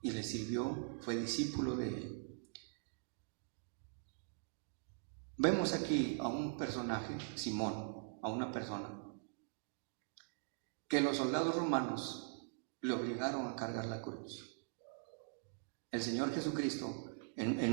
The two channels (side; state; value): left; silent; digital silence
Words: y le sirvió, fue discípulo de él. Vemos aquí a un personaje, Simón, a una persona que los soldados romanos le obligaron a cargar la cruz. El Señor Jesucristo,